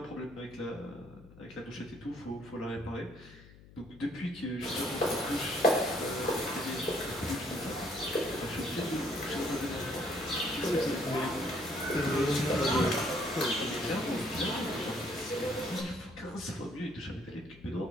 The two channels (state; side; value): noise; left; hum, 21 dB below the sound